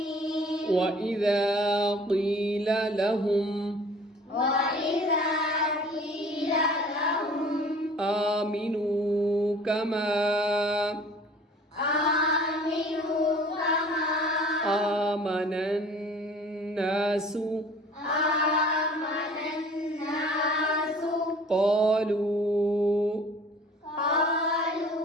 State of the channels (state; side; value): normal; both; correlation 0.49